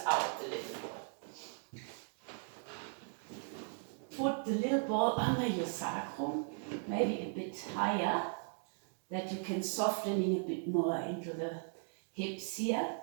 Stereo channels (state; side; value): silent; left; 53 dB below the other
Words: the little ball. Put the little ball under your sacrum, maybe a bit higher, that you can softening a bit more into the hips here,